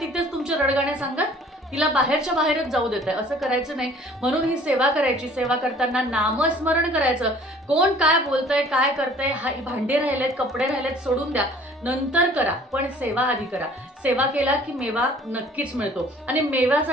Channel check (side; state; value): both; normal; correlation 0.52